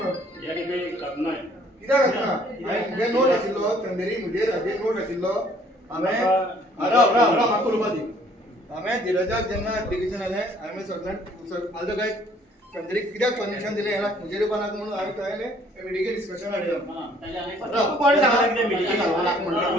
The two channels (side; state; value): both; normal; correlation 0.60